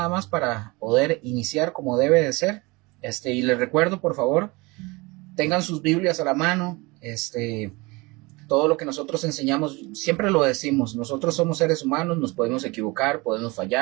más para poder iniciar como debe de ser. Y les recuerdo, por favor, tengan sus Biblias a la mano. Todo lo que nosotros enseñamos, siempre lo decimos, nosotros somos seres humanos, nos podemos equivocar, podemos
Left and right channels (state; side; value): quieter; left; 24.8 dB